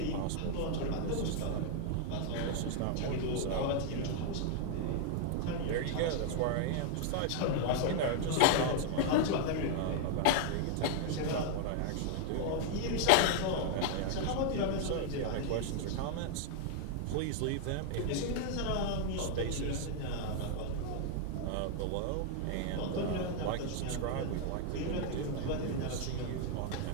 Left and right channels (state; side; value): different; both; correlation 0.00